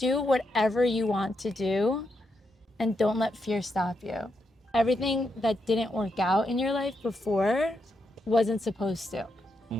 whatever you want to do and don't let fear stop you. Everything that didn't work out in your life before wasn't supposed to.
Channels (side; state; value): both; normal; correlation 0.82